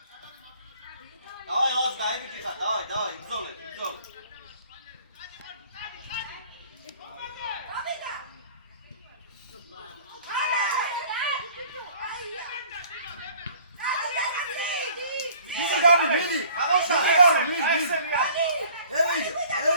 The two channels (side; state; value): both; inverted; correlation -0.53